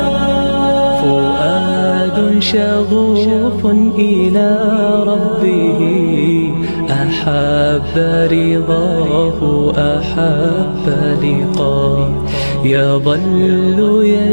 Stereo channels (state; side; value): inverted; both; correlation -1.00